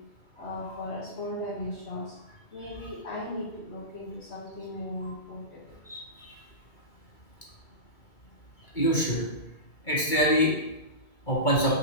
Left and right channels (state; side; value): late; right; 2.2 ms